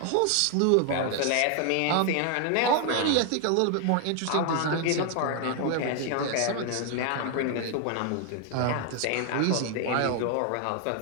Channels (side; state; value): both; different; correlation 0.00